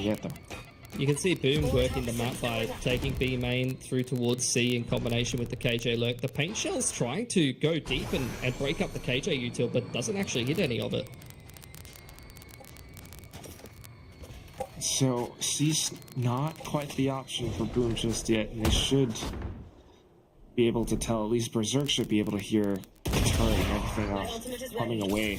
yet though. You can see Boom working the map by taking B main through towards C in combination with the KJ lurk. The paint shell's trying to go deep and break up the KJ util, but doesn't actually hit any of it. So C's not quite the option for Boom just yet, and they should be able to tell. At least Berserk should be able to hear the turret and everything else coming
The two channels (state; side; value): identical; both; correlation 1.00